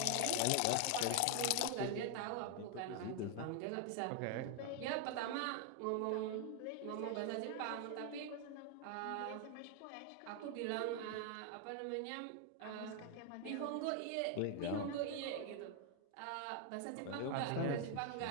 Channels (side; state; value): both; different; correlation 0.00